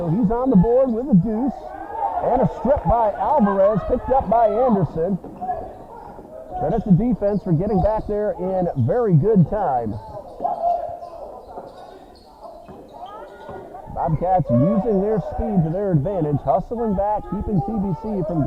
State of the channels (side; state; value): both; identical; correlation 1.00